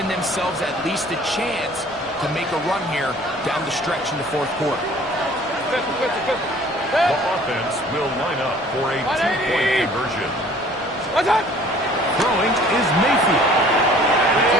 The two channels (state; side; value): normal; both; correlation 0.52